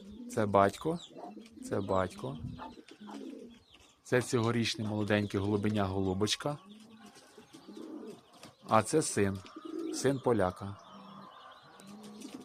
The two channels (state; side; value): identical; both; correlation 1.00